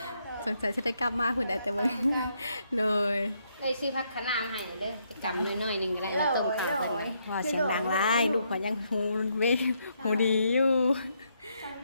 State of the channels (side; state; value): both; inverted; correlation -0.75